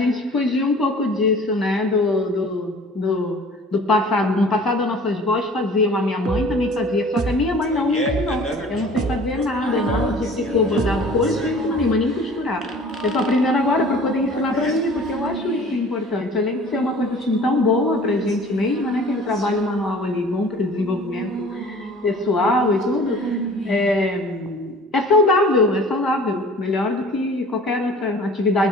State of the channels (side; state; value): both; normal; correlation 0.46